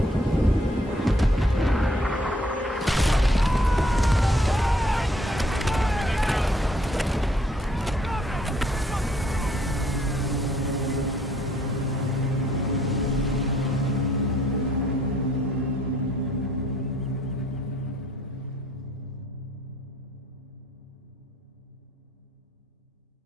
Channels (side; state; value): both; normal; correlation 0.65